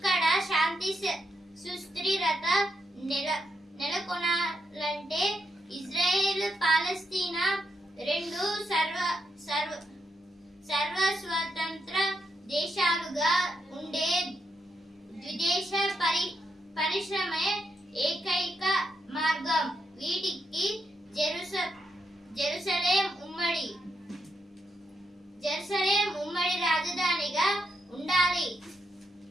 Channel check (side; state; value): both; normal; correlation 0.81